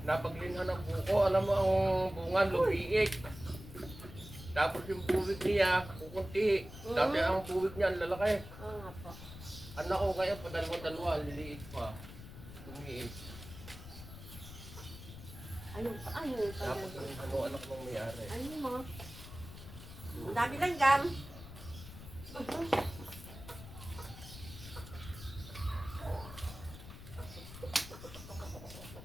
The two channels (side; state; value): left; noise; rumble, 13 dB below the sound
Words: Napaglinhan ng buko, alam mo ang bunga, lumiik. Tapos yung buwig niya, kukunti. Dati ang buwig niya, ang lalaki. Oo nga po. Anak ko ngayon, padalawa-dalawa, liliit pa. Lumiik. Ayun pa, ayun pa. Tapos yung anak mong may-ari. Ayun mo. Ang dami lang gam.